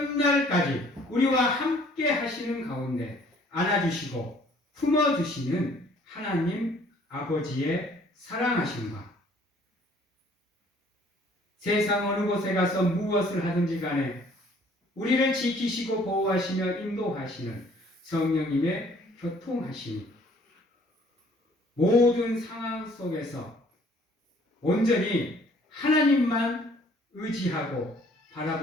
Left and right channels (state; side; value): normal; both; correlation 0.58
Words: 우리와 함께 하시는 가운데 안아주시고 품어주시는 하나님 아버지의 사랑하심과 세상 어느 곳에 가서 무엇을 하든지 간에 우리를 지키시고 보호하시며 인도하시는 성령님의 교통하심이 모든 상황 속에서 온전히 하나님만 의지하고